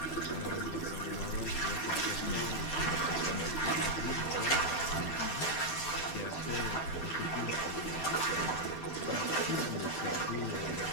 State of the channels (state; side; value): late; right; 12 ms